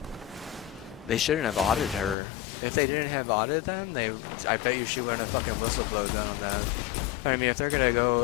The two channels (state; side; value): drops out; right; at 2.1 s